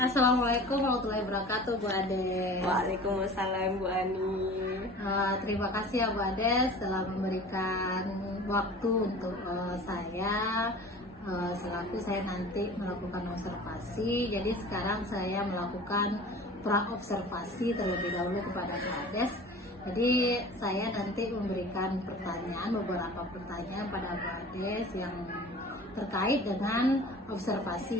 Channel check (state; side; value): normal; both; correlation 0.41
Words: Assalamualaikum warahmatullahi wabarakatuh, Bu Ades. Waalaikumsalam, Bu Ani. Terima kasih ya Bu Ades telah memberikan waktu untuk saya selaku saya nanti melakukan observasi. Jadi sekarang saya melakukan pra-observasi terlebih dahulu kepada Bu Ades. Jadi saya nanti memberikan beberapa pertanyaan pada Bu Ades yang terkait dengan